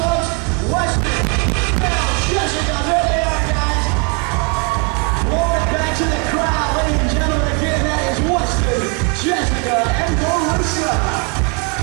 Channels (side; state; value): left; quieter; 34.7 dB